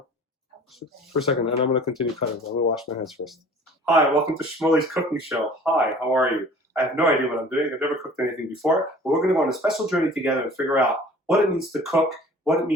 for a second, and I'm going to continue cutting. I'm going to wash my hands first. Hi, welcome to Shmully's cooking show. Hi, how are you? I have no idea what I'm doing. I've never cooked anything before, but we're going to go on a special journey together and figure out what it means to cook, what it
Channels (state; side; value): normal; both; correlation 0.47